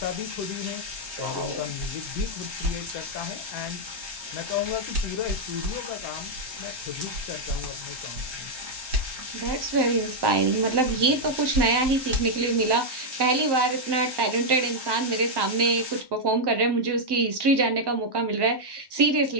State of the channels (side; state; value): left; late; 1.1 ms